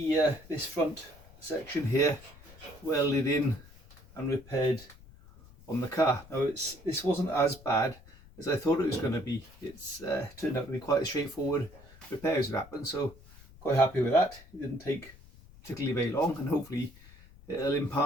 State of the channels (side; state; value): left; noise; rumble, 22 dB below the sound